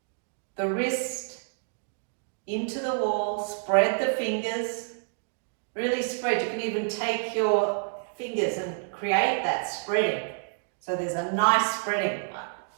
the wrist into the wall, spread the fingers, really spread. You can even take your fingers and create that spreading. So there's a nice spreading.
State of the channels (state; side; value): silent; left; digital silence